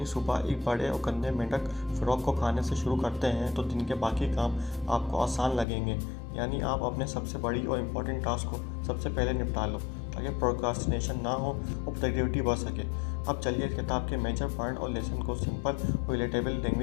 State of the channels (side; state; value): right; drops out; at 5.7 s